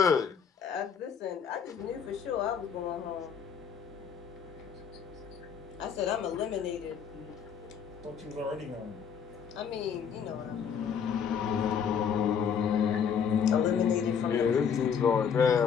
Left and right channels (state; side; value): quieter; right; 7.2 dB